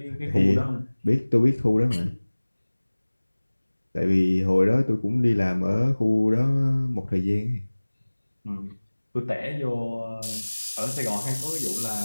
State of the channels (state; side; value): inverted; both; correlation -1.00